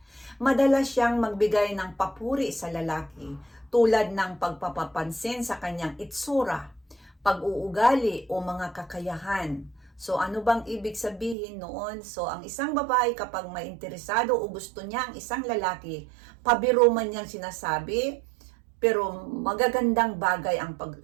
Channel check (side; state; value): left; drops out; at 11.4 s